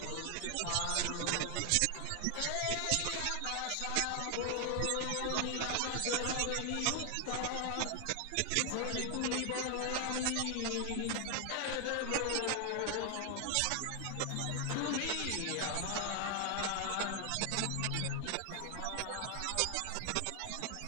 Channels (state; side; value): different; both; correlation 0.00